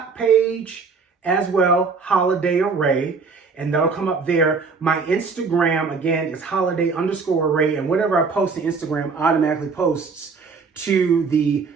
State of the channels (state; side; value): quieter; left; 4.8 dB